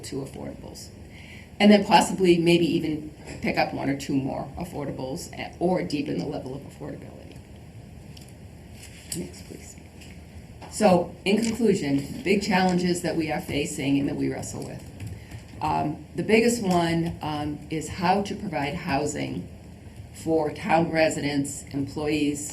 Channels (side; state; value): both; identical; correlation 1.00